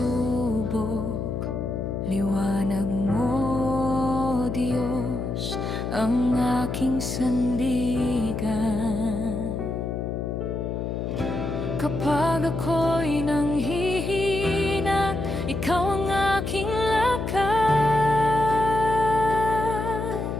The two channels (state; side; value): noise; left; hum, 3 dB below the sound